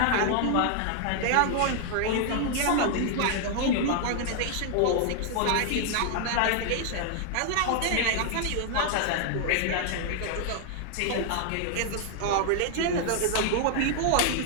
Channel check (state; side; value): different; both; correlation 0.00